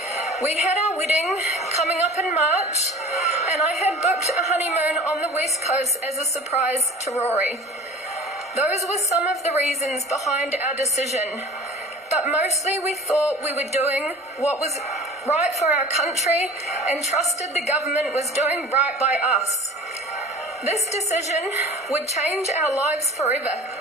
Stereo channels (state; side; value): normal; both; correlation 0.42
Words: We had our wedding coming up in March, and I had booked a honeymoon on the West Coast as a surprise to Rory. Those were some of the reasons behind our decision, but mostly we thought we were doing what was right for our country and trusted the government was doing right by us. This decision would change our lives forever.